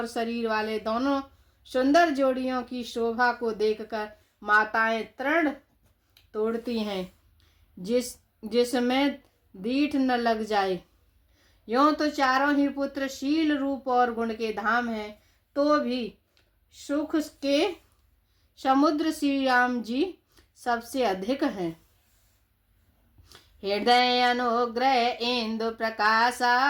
शरीर वाले दोनों सुंदर जोड़ियों की शोभा को देखकर माताएं तृण तोड़ती हैं, जिसमें दीठ न लग जाए। यों तो चारों ही पुत्र शील रूप और गुण के धाम हैं, तो भी सुख के समुद्र श्री राम जी सबसे अधिक हैं। हृदय अनुग्रह इंदु प्रकाशा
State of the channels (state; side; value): identical; both; correlation 1.00